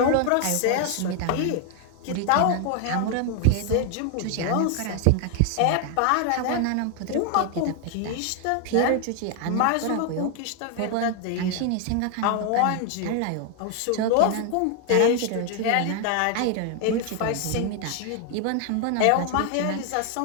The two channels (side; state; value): both; different; correlation 0.00